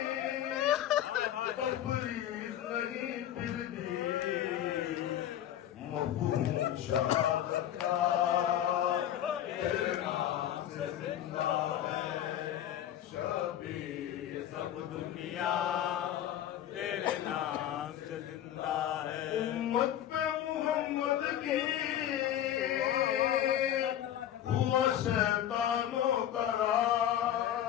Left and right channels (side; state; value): right; quieter; 11.4 dB